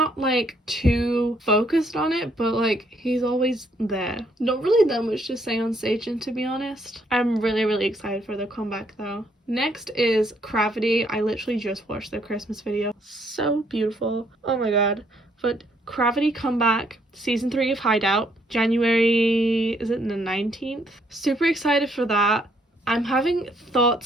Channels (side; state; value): both; normal; correlation 0.69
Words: like too focused on it, but like he's always there. Not really that much to say on Seijin, to be honest. I'm really excited for the comeback though. Next is Gravity. I literally just watched their Christmas video. So beautiful. Oh my god. But Gravity comeback, season 3 of Hideout, January, is it the 19th? Super excited for that. I'm having